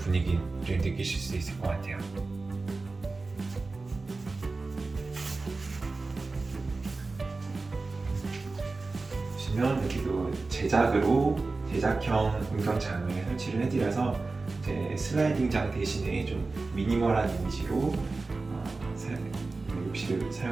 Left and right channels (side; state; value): left; quieter; 3.7 dB